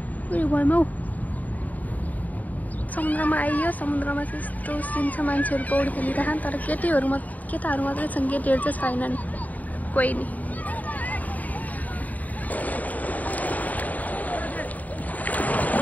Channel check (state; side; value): late; right; 0.076 ms